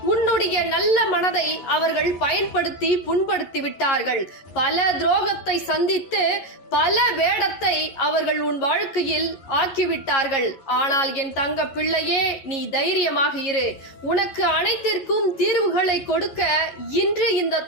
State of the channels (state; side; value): late; right; 11 ms